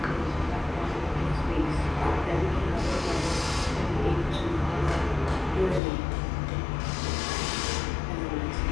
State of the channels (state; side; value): drops out; right; at 5.8 s